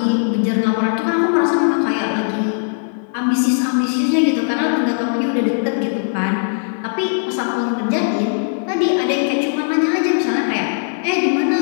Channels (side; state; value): right; silent; digital silence